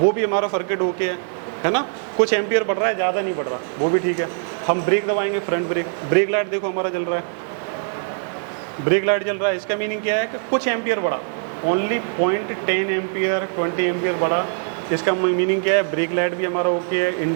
भी हमारा सर्किट ओके है ना, कुछ एम्पियर बढ़ रहा है, ज़्यादा नहीं बढ़ रहा, वो भी ठीक है। हम ब्रेक दबाएंगे, फ्रंट ब्रेक, ब्रेक लाइट देखो हमारा जल रहा है, ब्रेक लाइट जल रहा है। इसका मीनिंग क्या है कि कुछ एम्पियर बढ़ा, ओनली 0.10 एम्पियर 20 एम्पियर बढ़ा। इसका मीनिंग क्या है, ब्रेक लाइट भी हमारा ओके है,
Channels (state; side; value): silent; left; 56 dB below the other